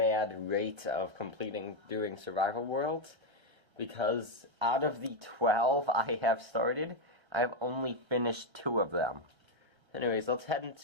rate of doing survival worlds because out of the 12 I have started, I have only finished 2 of them. Anyways, let's head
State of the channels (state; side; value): late; left; 1.3 ms